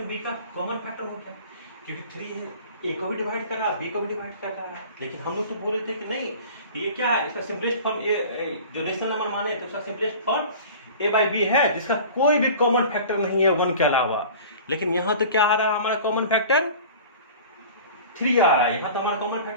बी का कॉमन फैक्टर हो गया, क्योंकि 3 ए को भी डिवाइड कर रहा है, बी को भी डिवाइड कर रहा है। लेकिन हम लोग तो बोले थे कि नहीं, ये क्या है, इसका सिंपलेस्ट फॉर्म जो रेशनल नंबर माने तो इसका simplest form a by b है, जिसका कोई भी कॉमन फैक्टर नहीं है 1 के अलावा। लेकिन यहाँ तो क्या आ रहा है, हमारा कॉमन फैक्टर 3 आ रहा है। यहाँ तो हमारा कॉमन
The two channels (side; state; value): both; inverted; correlation -0.41